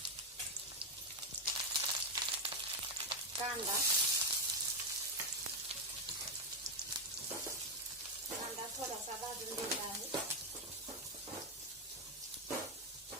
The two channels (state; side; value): normal; both; correlation 0.04